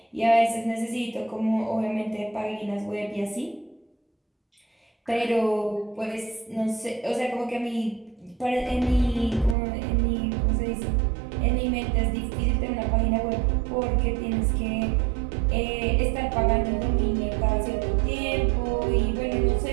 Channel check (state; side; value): drops out; left; at 9.6 s